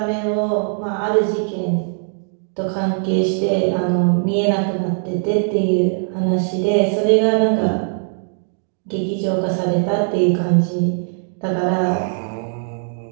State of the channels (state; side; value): silent; left; digital silence